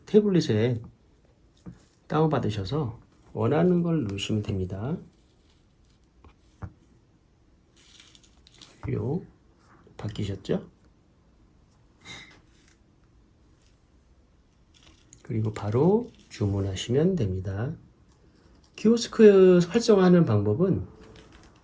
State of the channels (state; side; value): identical; both; correlation 1.00